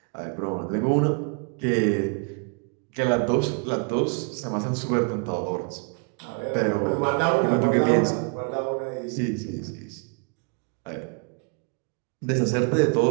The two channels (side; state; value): left; quieter; 38.1 dB